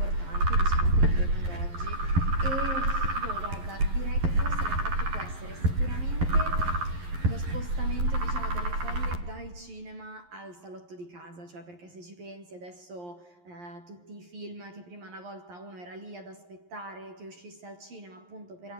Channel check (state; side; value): late; left; 11 ms